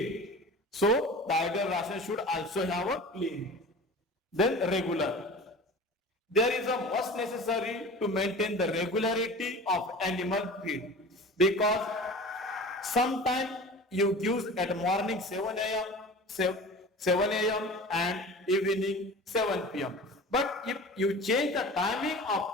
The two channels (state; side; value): normal; both; correlation 0.38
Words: So the ideal ration should also have a clean. Then regular. There is a must necessary to maintain the regularity of animal feed, because sometimes you give at morning 7 a.m. and evening 7 p.m. But if you change the timing